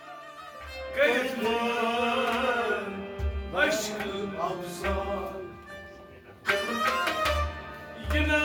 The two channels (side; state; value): both; identical; correlation 1.00